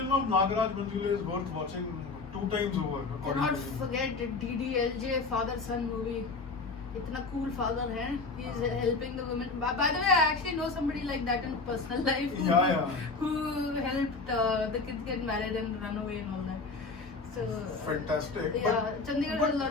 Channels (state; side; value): quieter; right; 4.0 dB